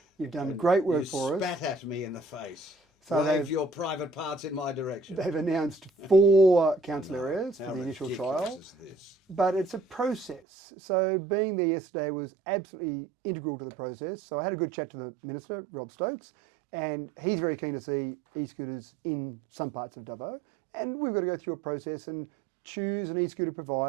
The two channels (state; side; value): drops out; left; at 10.4 s